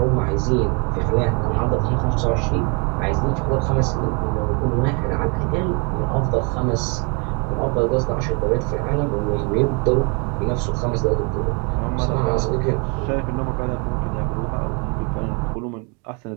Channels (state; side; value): quieter; left; 34.7 dB